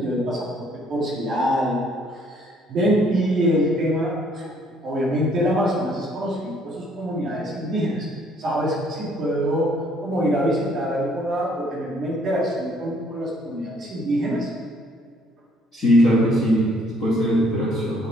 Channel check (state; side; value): normal; both; correlation 0.64